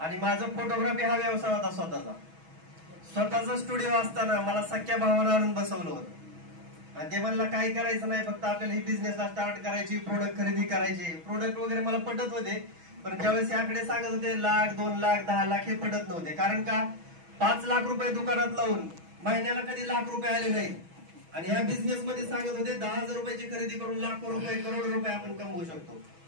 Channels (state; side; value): late; left; 6.2 ms